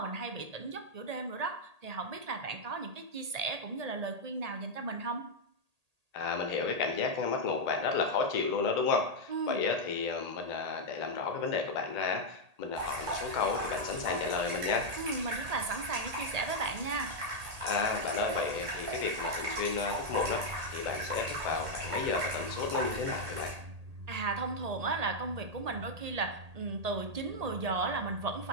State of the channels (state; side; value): late; left; 1.8 ms